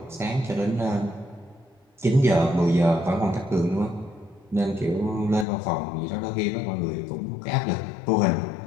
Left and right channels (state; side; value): drops out; right; at 5.5 s